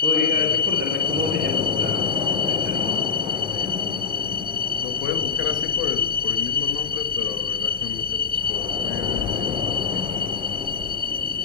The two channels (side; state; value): right; quieter; 5.6 dB